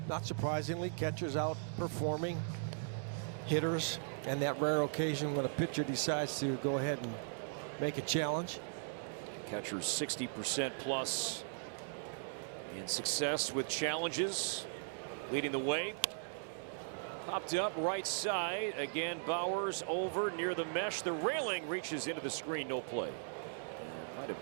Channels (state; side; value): silent; left; digital silence